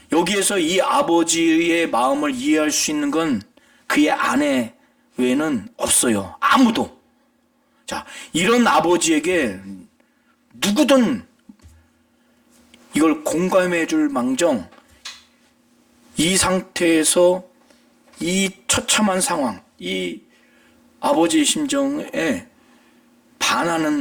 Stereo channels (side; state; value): both; identical; correlation 1.00